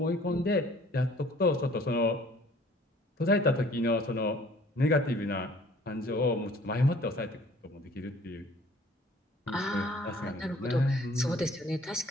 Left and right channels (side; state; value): both; normal; correlation 0.54